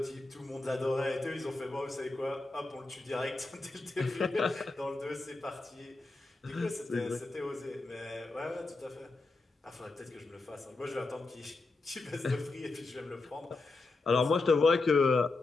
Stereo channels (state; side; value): quieter; right; 3.4 dB